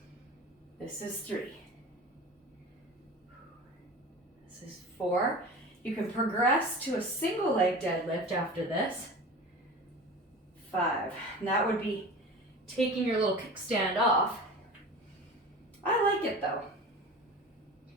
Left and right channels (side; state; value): both; normal; correlation 0.35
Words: This is 3. This is 4. You can progress to a single leg deadlift after this. 5. And that would be taking your little kickstand off. I like it though.